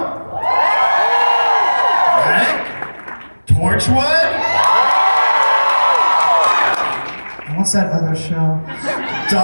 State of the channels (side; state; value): both; inverted; correlation -1.00